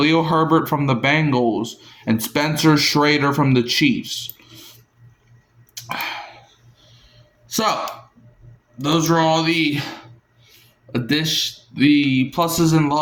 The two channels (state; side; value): identical; both; correlation 1.00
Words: Herbert from the Bengals, and Spencer Schrader from the Chiefs. So, those are all the pluses and